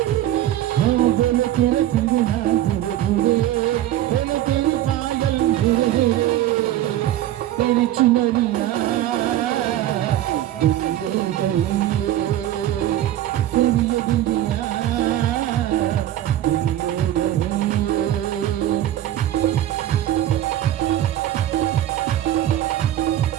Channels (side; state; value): left; quieter; 12.9 dB